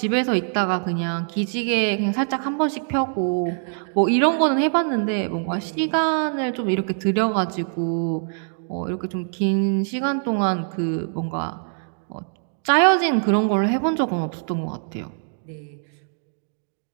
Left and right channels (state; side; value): silent; left; 63 dB below the other